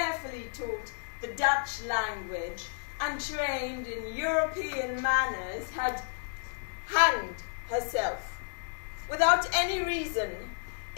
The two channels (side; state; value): right; silent; 57 dB below the other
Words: taught the Dutch language untrained in European manners, had hanged herself, without any reason,